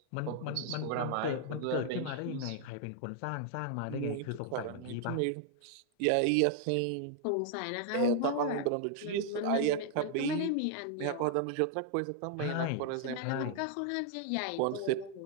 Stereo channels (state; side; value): different; both; correlation 0.00